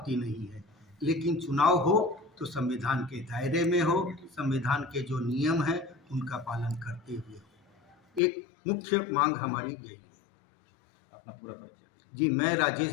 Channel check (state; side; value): drops out; right; at 8.2 s